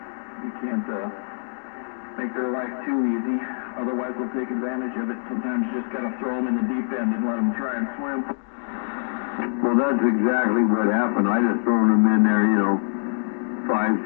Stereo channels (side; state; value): right; silent; digital silence